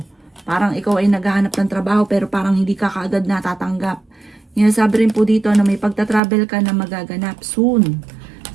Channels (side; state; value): left; drops out; at 6.2 s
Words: Parang ikaw ay naghahanap ng trabaho pero parang hindi ka kaagad natatanggap. Sabi rin po dito na may pagta-travel ka na magaganap soon.